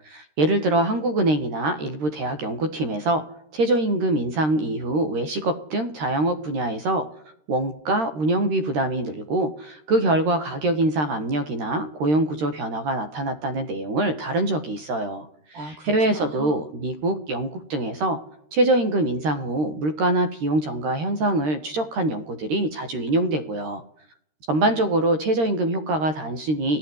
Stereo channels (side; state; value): left; late; 13 ms